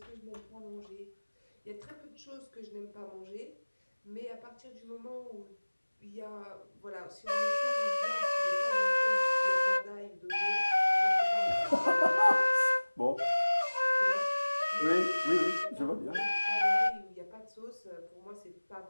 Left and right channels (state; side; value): inverted; both; correlation -1.00